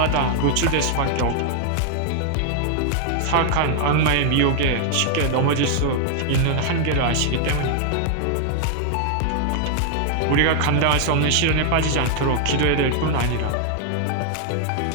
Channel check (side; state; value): both; different; correlation 0.00